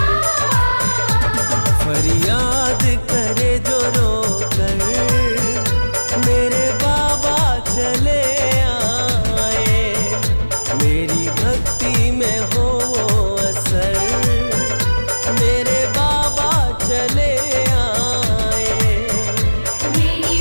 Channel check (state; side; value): inverted; both; correlation -1.00